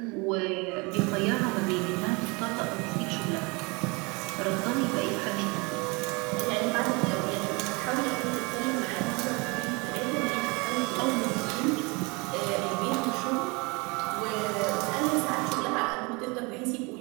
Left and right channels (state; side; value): quieter; left; 27.9 dB